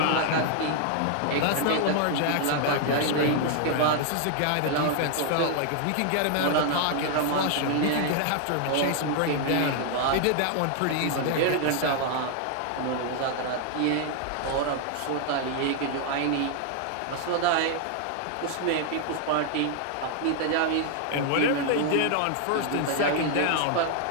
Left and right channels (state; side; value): different; both; correlation 0.00